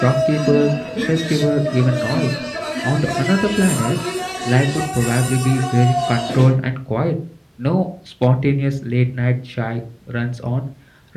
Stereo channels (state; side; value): identical; both; correlation 1.00